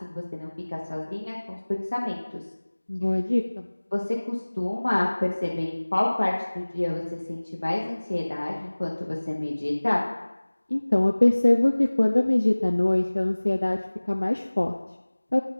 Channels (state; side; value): inverted; both; correlation -1.00